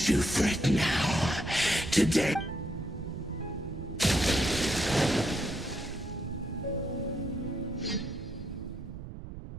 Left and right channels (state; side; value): noise; right; rumble, 10 dB below the sound